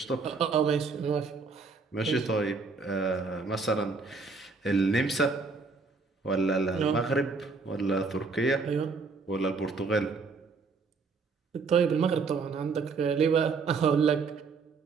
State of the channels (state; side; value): quieter; left; 4.5 dB